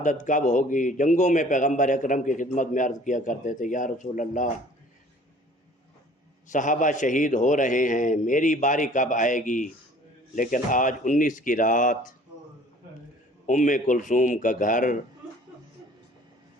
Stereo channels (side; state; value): both; normal; correlation 0.51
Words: کب ہوگی، جنگوں میں پیغمبر اکرم کی خدمت میں عرض کیا کرتے تھے، یا رسول اللہ، صحابہ شہید ہو رہے ہیں، میری باری کب آئے گی؟ لیکن آج 19 کی رات ام کلثوم کا گھر،